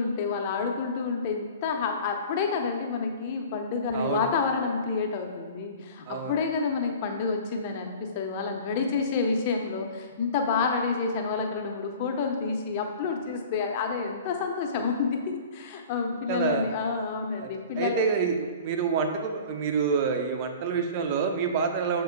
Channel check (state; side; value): inverted; both; correlation -0.41